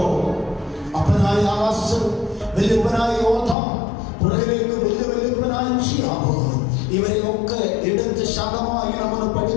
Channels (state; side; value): drops out; right; at 3.6 s